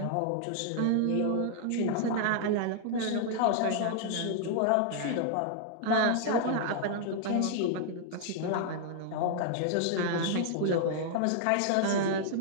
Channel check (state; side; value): different; both; correlation -0.01